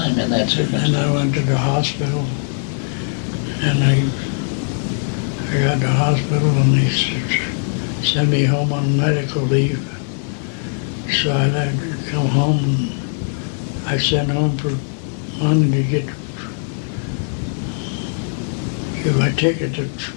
in that circumstance. And I went to the hospital, and I got to the hospital, and they sent me home on medical leave. So I had to come home, and I sent home for money to get my ticket to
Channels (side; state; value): right; silent; 66 dB below the other